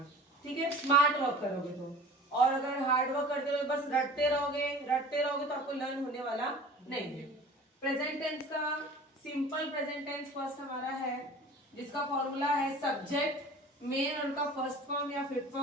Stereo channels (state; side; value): normal; both; correlation 0.42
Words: ठीक है, स्मार्ट वर्क करोगे तो। और अगर हार्ड वर्क करते रहोगे, बस रटते रहोगे तो आपको लर्न होने वाला नहीं है। प्रेजेंट टेंस का सिंपल प्रेजेंट टेंस फर्स्ट हमारा है, जिसका फॉर्मूला है सब्जेक्ट, मेन उनका फर्स्ट फॉर्म या fifth